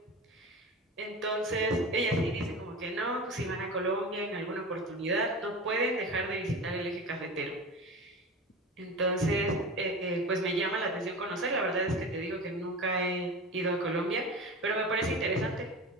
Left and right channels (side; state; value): both; normal; correlation 0.31